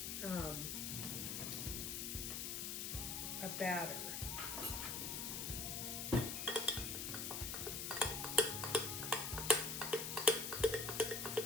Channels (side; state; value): left; noise; hiss, 2 dB below the sound